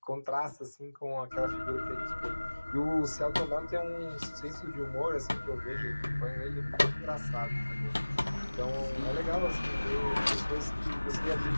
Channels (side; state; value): both; inverted; correlation -1.00